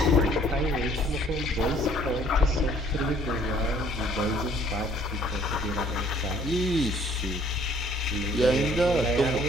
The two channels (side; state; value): both; normal; correlation 0.59